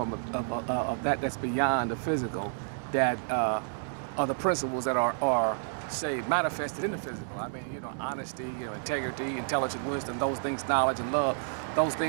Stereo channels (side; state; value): left; silent; 58 dB below the other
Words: of that's beyond the physical, that are the principles that are say manifested in the physical. I mean, honesty, integrity, intelligent wisdom, those things, knowledge and love, those